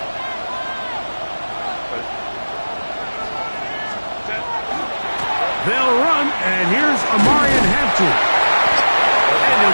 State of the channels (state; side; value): inverted; both; correlation -1.00